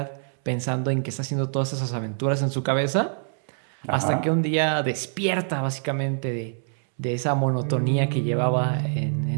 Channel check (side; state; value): left; silent; 62 dB below the other